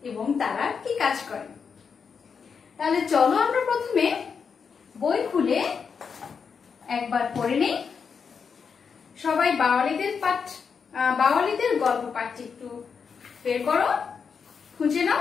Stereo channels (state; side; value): quieter; right; 6.1 dB